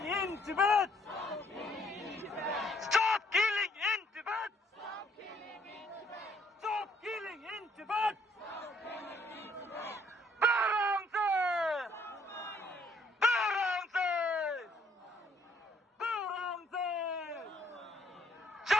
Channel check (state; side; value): normal; both; correlation 0.66